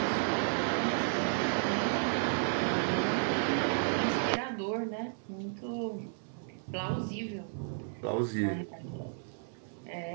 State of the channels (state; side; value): silent; left; 56 dB below the other